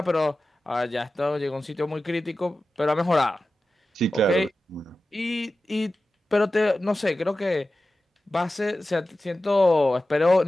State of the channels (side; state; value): both; normal; correlation 0.94